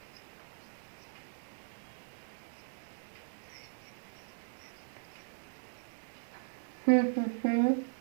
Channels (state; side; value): silent; left; 52 dB below the other